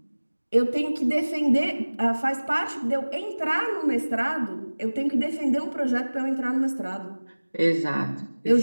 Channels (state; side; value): inverted; both; correlation -1.00